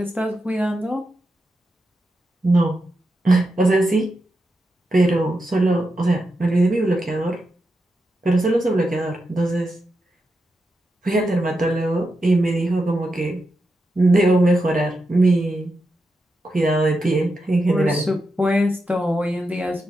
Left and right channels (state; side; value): normal; both; correlation 0.87